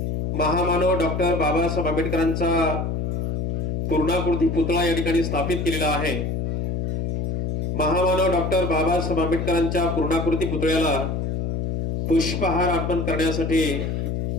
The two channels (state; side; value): noise; left; hum, 1 dB below the sound